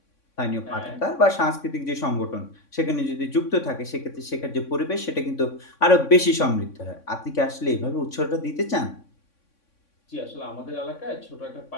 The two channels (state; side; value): late; right; 3.6 ms